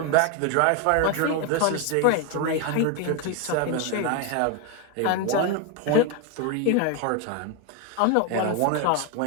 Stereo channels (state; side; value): different; both; correlation 0.01